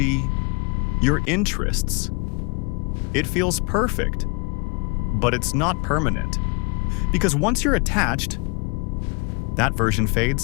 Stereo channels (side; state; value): right; quieter; 31.7 dB